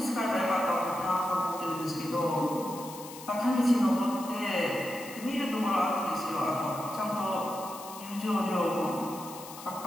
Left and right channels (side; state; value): left; noise; hiss, 15 dB below the sound